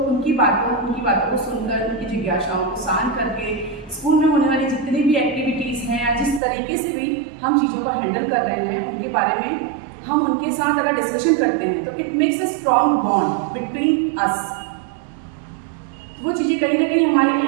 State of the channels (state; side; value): drops out; left; at 6.4 s